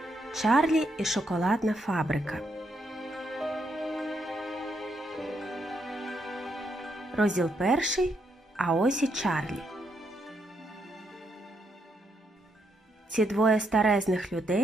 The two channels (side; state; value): both; normal; correlation 0.77